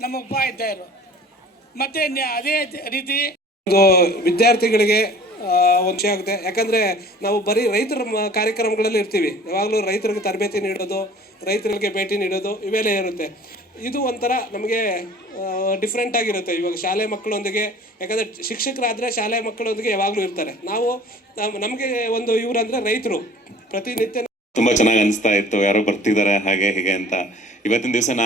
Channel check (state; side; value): normal; both; correlation 0.47